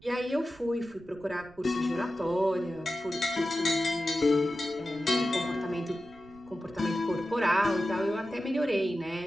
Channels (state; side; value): noise; right; rumble, 24 dB below the sound